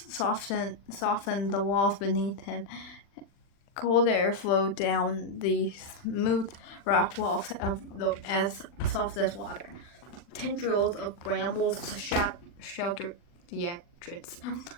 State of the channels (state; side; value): late; right; 40 ms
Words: softened the walls beneath him. Cold air flowed down the smooth rock walls as soft as water. Tendrils of brambles sheltered the entrance.